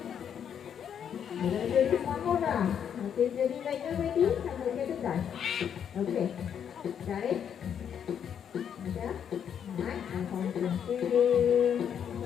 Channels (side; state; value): right; quieter; 8.4 dB